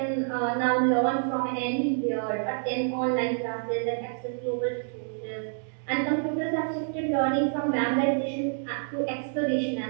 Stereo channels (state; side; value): silent; left; digital silence